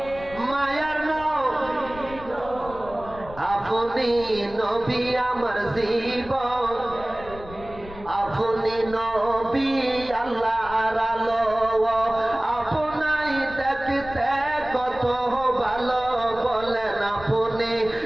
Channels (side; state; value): left; noise; rumble, 16 dB below the sound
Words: মায়ার আপনি নবী আমার জীবন, আপনি নবী আল্লাহর আলো, আপনাই দেখতে কত ভালো, বলেন আপনি